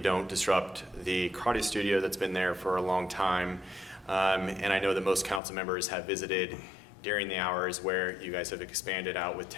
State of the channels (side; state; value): right; drops out; at 5.4 s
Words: disrupt the karate studio that's been there for a long time. And I know that most council members have visited during the hours where you guys have expanded out with